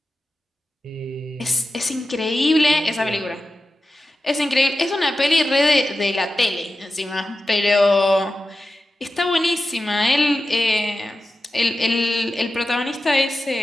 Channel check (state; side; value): normal; both; correlation 0.93